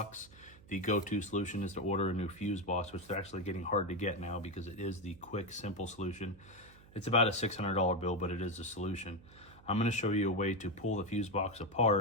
The go-to solution is to order a new fuse box, which they're actually getting hard to get now because it is the quick, simple solution. It's about a $600 bill, but it is a solution. I'm going to show you a way to pull the fuse box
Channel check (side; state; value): right; noise; hum, 23 dB below the sound